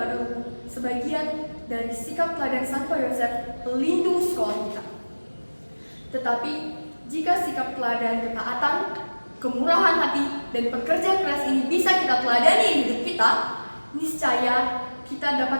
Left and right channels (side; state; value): both; inverted; correlation -1.00